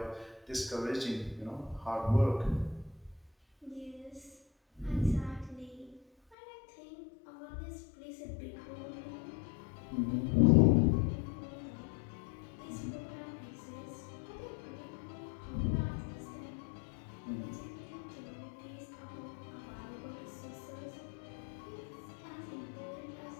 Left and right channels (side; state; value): right; drops out; at 6.4 s